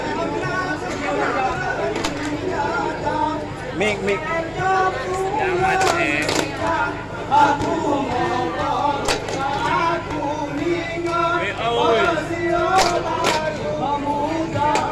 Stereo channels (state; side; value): identical; both; correlation 1.00